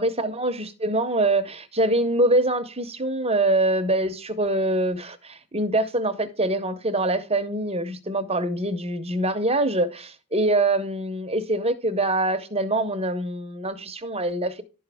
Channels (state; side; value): normal; both; correlation 0.19